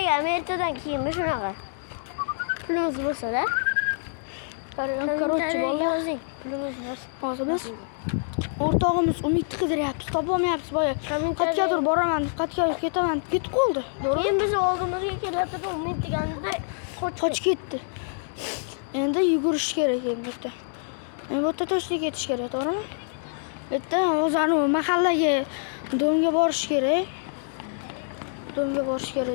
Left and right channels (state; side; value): silent; right; digital silence